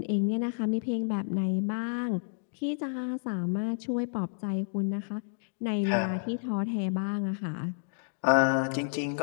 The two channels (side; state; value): right; silent; digital silence